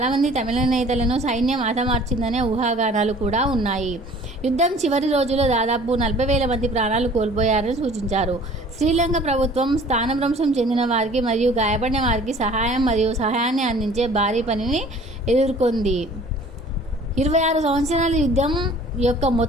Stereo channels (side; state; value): both; normal; correlation 0.50